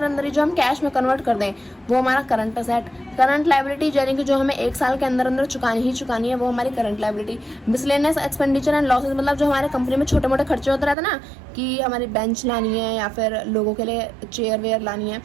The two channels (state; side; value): drops out; left; at 11.0 s